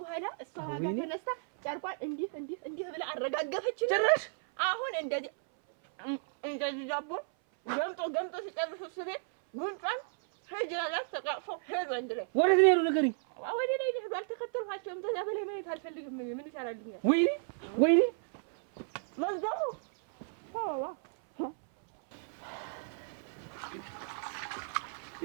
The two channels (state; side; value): silent; left; 55 dB below the other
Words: እሷ ዋጋ ተነስታ ጨርቋን እንዲህ ብላ አረጋገፈች። ጭራሽ አሁን እንደዚህ ዳቦ ገምጦ ሲጨርሱ እሱ ቤት ጉንጯን ሄጅላላት ተቃቅፎ ሄዱ። አንድ ላይ ወዴት ነው የሄዱ? ንገሪኝ። ወደ ላይ ሄዱ። አልተከተልኋቸውም። ከዛ በላይ ማየት አልፈልግም። ምን ይሰራልኛል? ወይ መዝጋቡ